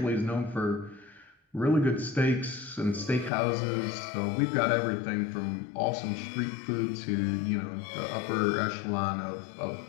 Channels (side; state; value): right; drops out; at 3.3 s